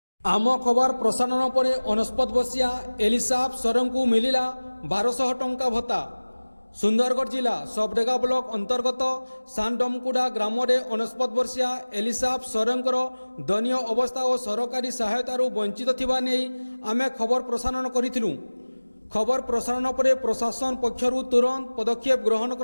आम खबर प्रसारण पर 69 वर्षीया एलिसाब सरन को मिलिला 1200 टंका भत्ता। सुंदरगढ़ जिला सबडेगा ब्लॉक अंतर्गत सानडमकुड़ा ग्राम में 69 वर्षीया एलिसाब सरंकर दयनीय अवस्था और सरकारी सहायतार वंचित थिबा नै आमे खबर प्रसारण करिथिलु। खबर प्रसारण पर प्रशासन पक्षरु तुरंत पदक्षेप ग्रहण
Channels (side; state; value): both; inverted; correlation -1.00